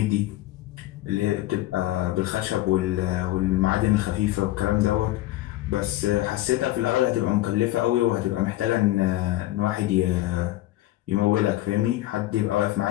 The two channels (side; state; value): right; quieter; 16.2 dB